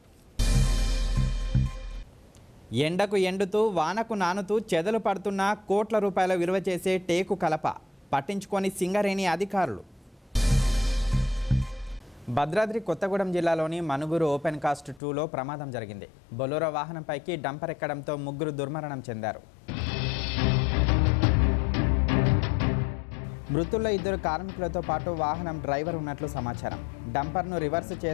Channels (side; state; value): right; drops out; at 15.0 s